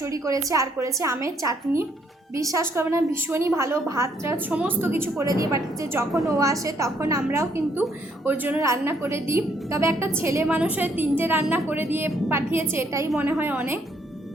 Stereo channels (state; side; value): normal; both; correlation 0.69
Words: করেছে, আর করেছে আমের চাটনি। বিশ্বাস করবে না, ভীষণই ভালো। ভাত টাত সমস্ত কিছু করে দিয়ে পাঠিয়েছে। যখন ও আসে তখন আমরাও কিন্তু ওর জন্য রান্না করে দিই। তবে একটা ছেলে মানুষের 3টে রান্না করে দিয়ে পাঠিয়েছে, এটাই মনে হয় অনেক।